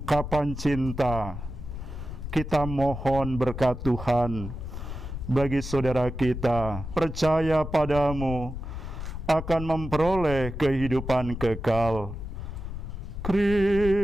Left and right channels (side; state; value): left; noise; rumble, 7 dB below the sound